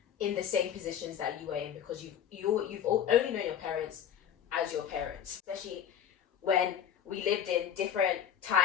in the same positions that you were in, because you've only known your parents as your parents, especially when we lived in different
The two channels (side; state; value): right; quieter; 9.2 dB